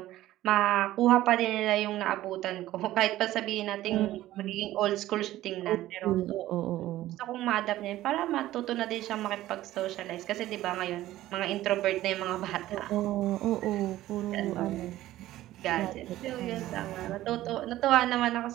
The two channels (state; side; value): quieter; left; 15.0 dB